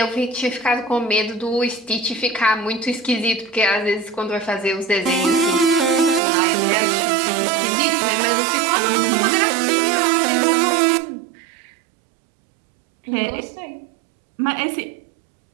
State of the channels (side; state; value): left; drops out; at 6.2 s